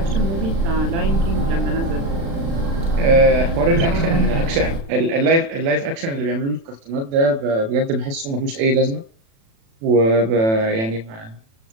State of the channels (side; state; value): left; late; 36 ms